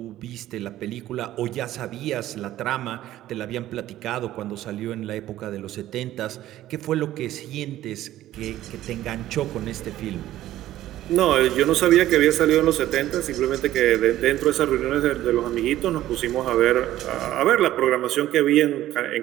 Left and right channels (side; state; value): left; quieter; 13.9 dB